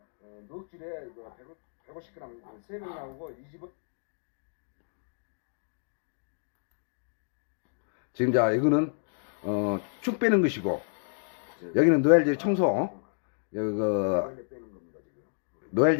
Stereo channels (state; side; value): silent; right; digital silence